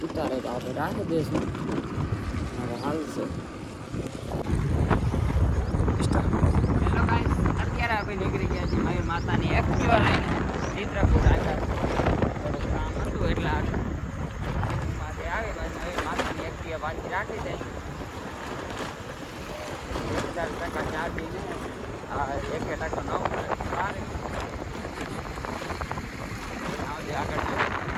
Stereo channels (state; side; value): identical; both; correlation 1.00